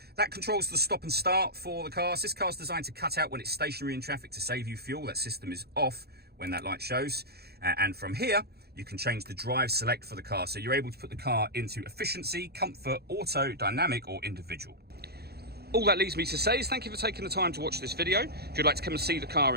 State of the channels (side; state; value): left; late; 0.46 ms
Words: That controls the stop and start for the car. This car is designed to cut out when it's stationary in traffic to save you fuel. That system is off when that light shows. And from here, you can change the drive select for the car. So you're able to put the car into efficiency, comfort, auto, dynamic, or individual. All that leaves me to say is thank you for taking the time to watch this video. If you'd like to come and see the car